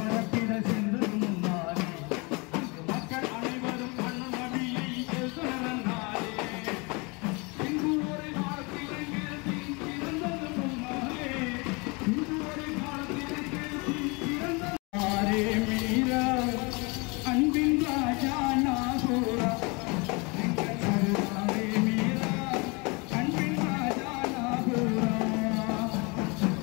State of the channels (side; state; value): right; quieter; 28.8 dB